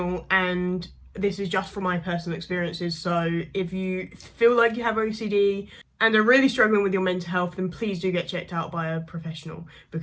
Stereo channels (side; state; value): both; identical; correlation 1.00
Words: and this is just from my personal experiences. So if you feel like you have OCD and are really struggling with your mental health, then please do get checked out by a professional,